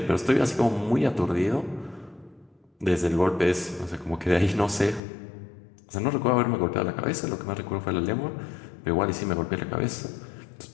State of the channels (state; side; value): drops out; right; at 5.0 s